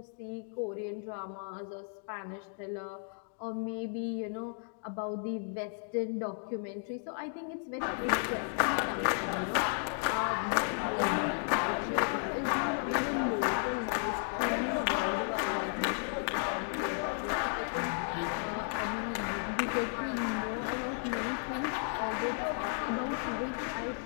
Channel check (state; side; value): silent; right; 55 dB below the other